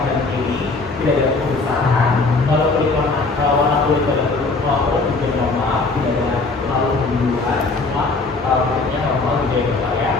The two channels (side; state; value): right; quieter; 3.7 dB